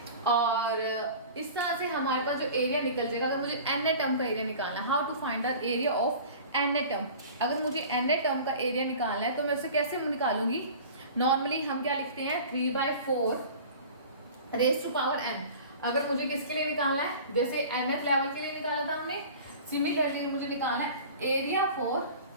और इस तरह से हमारे पास जो एरिया निकल जाएगा। अगर मुझे एन ए टर्म का एरिया निकालना है, how to find the area of n a term, अगर मुझे एन ए टर्म का एरिया निकालना है तो मैं उसे कैसे निकालूंगी। नॉर्मली हम क्या लिखते हैं 3/4 रेज टू पावर n। अगर मुझे किसके लिए निकालना है, जैसे एन एफ लेवल के लिए निकाला था हमने, सिमिलरली मुझे निकालना है एरिया फॉर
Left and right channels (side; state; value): both; inverted; correlation -0.40